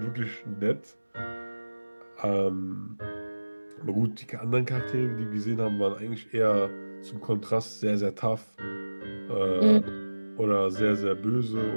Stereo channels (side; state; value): both; inverted; correlation -1.00